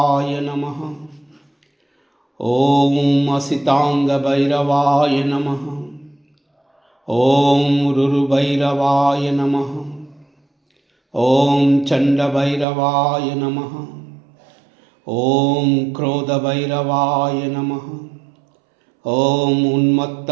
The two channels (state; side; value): drops out; left; at 12.7 s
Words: నమః. ఓం అసితాంగభైరవాయ నమః. ఓం రురుభైరవాయ నమః. ఓం చండభైరవాయ నమః. ఓం క్రోధభైరవాయ నమః. ఓం